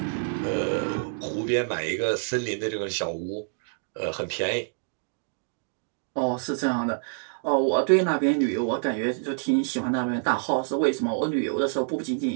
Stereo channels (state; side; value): silent; left; digital silence